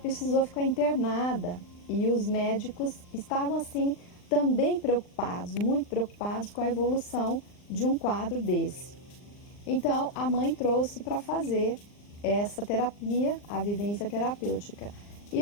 ficar internada. E os médicos estavam, assim, também preocupados, muito preocupados com a evolução de um quadro desse. Então, a mãe trouxe para fazer essa terapia, a vivência terapêutica. E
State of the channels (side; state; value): right; late; 39 ms